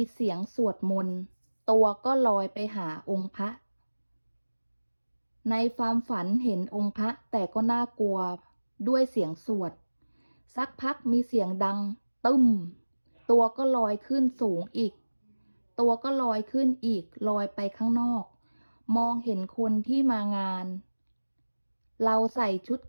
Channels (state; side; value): inverted; both; correlation -1.00